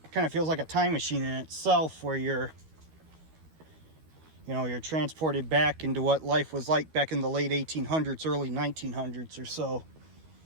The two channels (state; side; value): late; left; 13 ms